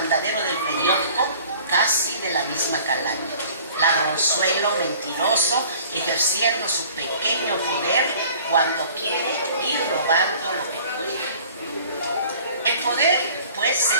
del periódico, casi de la misma calaña. Ladronzuelo, mentiroso, ejerciendo su pequeño poder cuando quiere ir robando lo que puede. El poder, pues, se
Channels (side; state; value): both; inverted; correlation -0.50